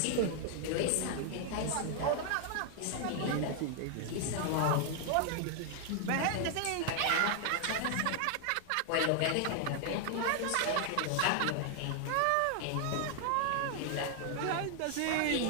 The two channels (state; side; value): different; both; correlation 0.00